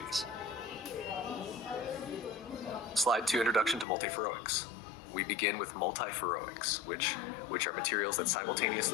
Slide 2, Introduction to Multiferroics. We begin with multiferroics, which are materials that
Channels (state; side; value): drops out; right; at 3.9 s